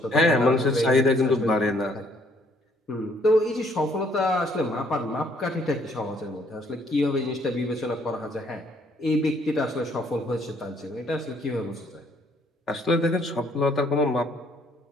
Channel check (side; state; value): both; normal; correlation 0.65